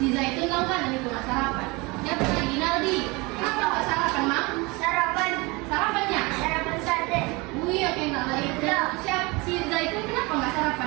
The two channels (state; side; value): quieter; left; 25.5 dB